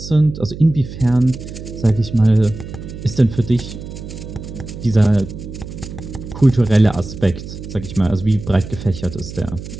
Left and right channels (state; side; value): noise; right; hum, 11 dB below the sound